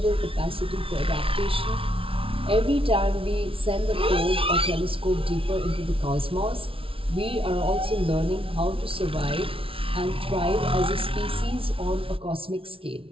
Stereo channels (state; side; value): late; left; 0.26 ms